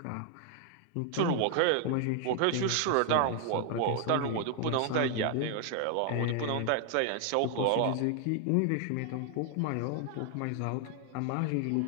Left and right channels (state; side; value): different; both; correlation 0.00